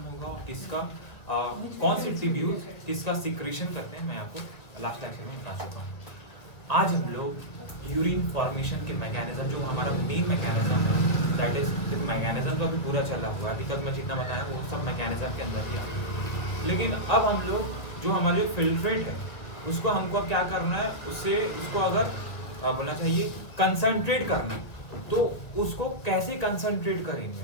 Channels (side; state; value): right; late; 1.7 ms